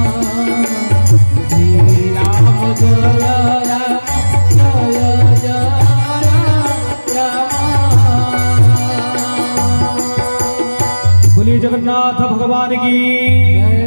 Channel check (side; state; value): both; inverted; correlation -1.00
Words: जगन्नाथ भगवान की